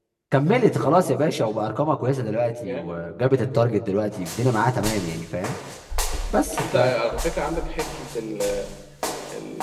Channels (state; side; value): identical; both; correlation 1.00